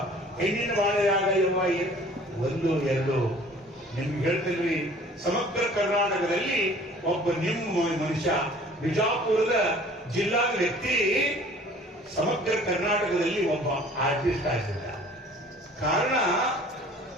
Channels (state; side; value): normal; both; correlation 0.50